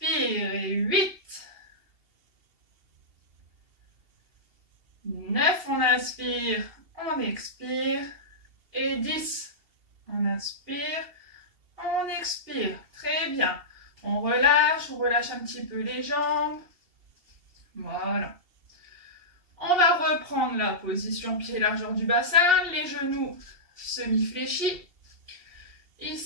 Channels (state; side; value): late; left; 2.8 ms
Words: Et 8. 9. On inspire. On expire. Et 10. On inspire, on expire. Très bien. On relâche un petit peu les jambes. Voilà. On va reprendre la position pied largeur du bassin, les genoux semi-fléchis.